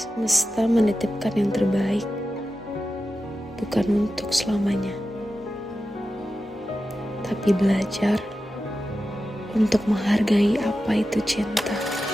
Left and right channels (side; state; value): both; normal; correlation 0.92